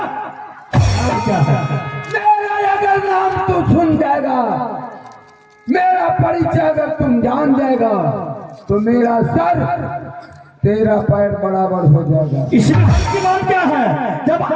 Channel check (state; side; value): identical; both; correlation 1.00